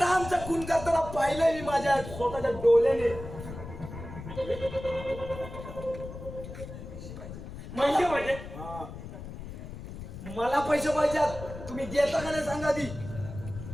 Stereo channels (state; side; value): noise; left; rumble, 11 dB below the sound